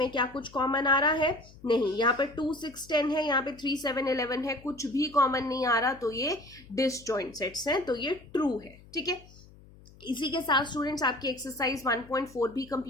क्या कुछ कॉमन आ रहा है, नहीं। यहाँ पे 2, 6, 10 है, यहाँ पे 3, 7, 11 है, कुछ भी कॉमन नहीं आ रहा, तो ये डिसजॉइंट सेट्स हैं, तो ये ट्रू है। ठीक है, इसी के साथ स्टूडेंट्स आपकी एक्सरसाइज 1.4 भी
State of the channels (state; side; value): noise; left; hum, 23 dB below the sound